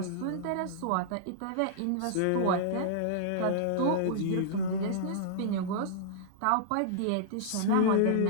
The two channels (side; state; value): both; different; correlation -0.02